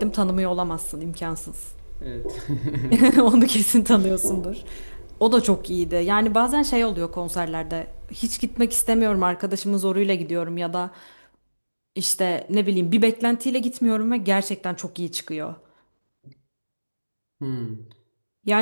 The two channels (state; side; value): inverted; both; correlation -1.00